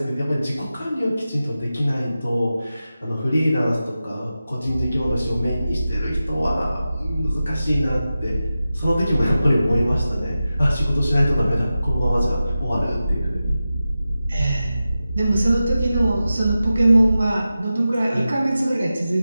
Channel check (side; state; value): both; inverted; correlation -0.93